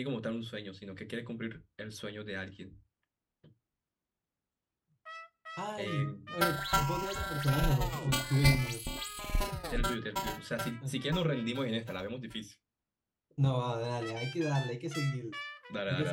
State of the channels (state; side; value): identical; both; correlation 1.00